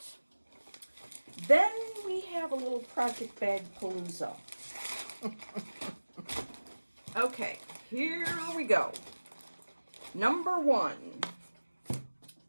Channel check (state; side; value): inverted; both; correlation -1.00